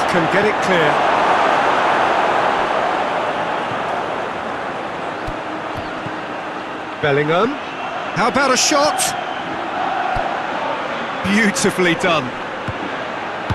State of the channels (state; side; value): identical; both; correlation 1.00